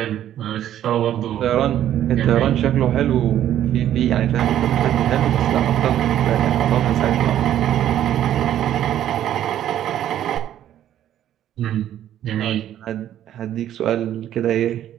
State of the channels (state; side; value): quieter; left; 11.4 dB